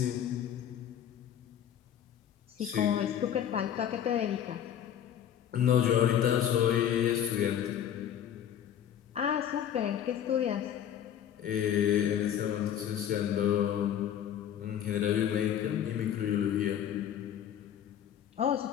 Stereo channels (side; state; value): right; quieter; 9.9 dB